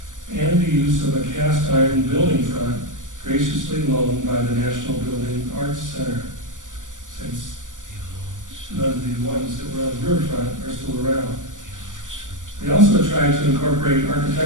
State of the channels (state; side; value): late; left; 0.87 ms